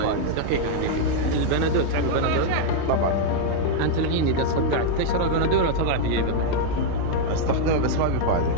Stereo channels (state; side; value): different; both; correlation -0.01